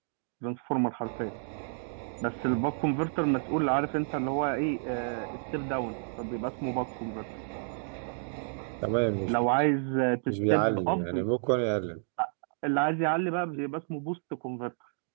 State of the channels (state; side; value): silent; left; digital silence